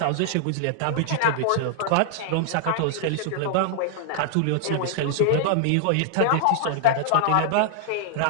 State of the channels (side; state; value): both; different; correlation -0.01